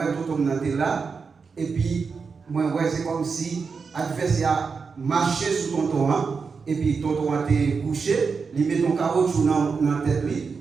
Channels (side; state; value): left; quieter; 5.2 dB